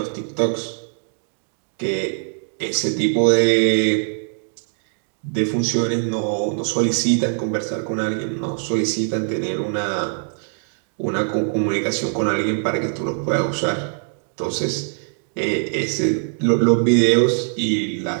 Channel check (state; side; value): silent; left; digital silence